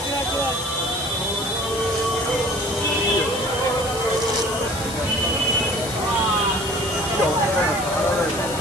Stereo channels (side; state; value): left; noise; hiss, 10 dB below the sound